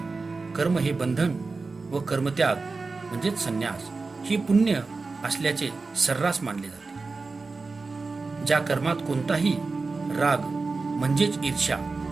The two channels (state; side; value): quieter; left; 4.0 dB